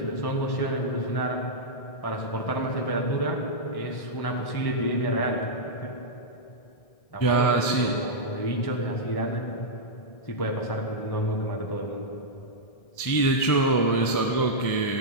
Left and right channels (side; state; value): right; late; 1.6 ms